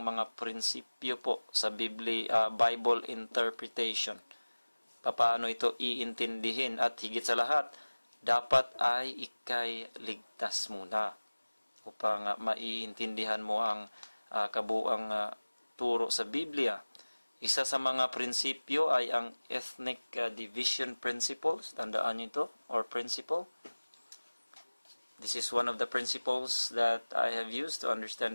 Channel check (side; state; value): both; inverted; correlation -1.00